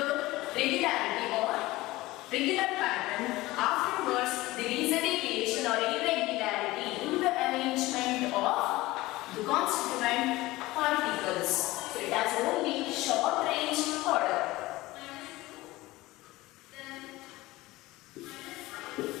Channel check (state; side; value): quieter; right; 19.1 dB